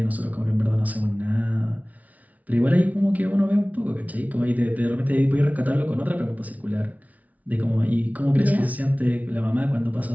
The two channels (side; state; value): left; late; 0.071 ms